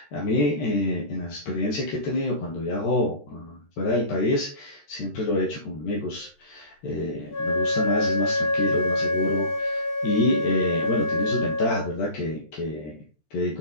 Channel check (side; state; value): right; late; 13 ms